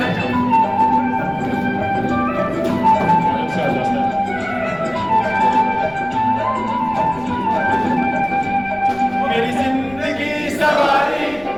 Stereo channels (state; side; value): noise; left; rumble, 22 dB below the sound